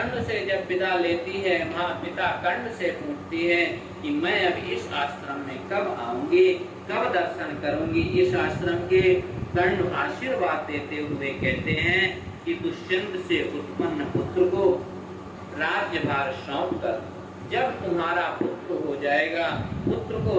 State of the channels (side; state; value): both; identical; correlation 1.00